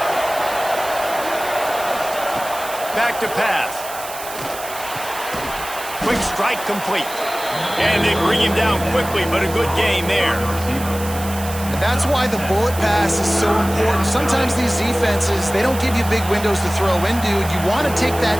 Back to pass. Quick strike complete. And they bring him down quickly, but a good gain there. And that's why the bullet pass is so important. Sometimes these defenses, they don't give you big windows to throw into. You want to take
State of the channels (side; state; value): right; noise; hiss, 12 dB below the sound